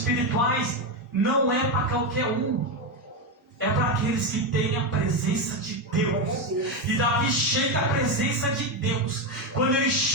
não é para qualquer um. É para aqueles que têm a presença de Deus. E Davi chega à presença de Deus. Quando ele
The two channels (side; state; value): both; normal; correlation 0.10